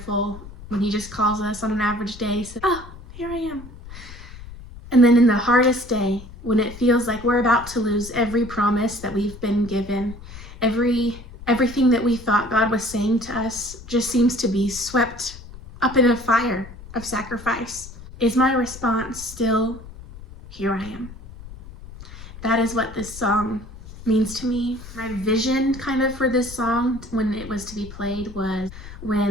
when he just calls us on an average day, says, oh, here I am. And then in the hardest day, when it feels like we're about to lose every promise that we've been given, everything that we thought God was saying to us just seems to be swept up in a fire of sacrifice. Is my response still, here I am? That is what this song means to me. My vision kind of for this song when it was to be played was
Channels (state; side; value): noise; left; rumble, 16 dB below the sound